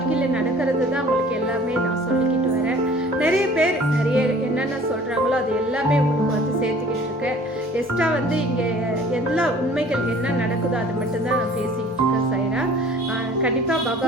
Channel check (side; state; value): both; normal; correlation 0.49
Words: நடக்கிறது தான் உங்களுக்கு எல்லாமே நான் சொல்லிக்கிட்டு வரேன். நிறைய பேர் நிறைய என்னென்ன சொல்கிறாங்களோ அது எல்லாமே உங்களுக்கு வந்து சேர்த்துக்கிட்டு இருக்கேன். எக்ஸ்ட்ரா வந்து இங்கே எல்லா உண்மைகள் என்ன நடக்குதோ அது மட்டும்தான் நான் பேசிக்கிட்டு இருக்கேன். சைரா கண்டிப்பாக பாபா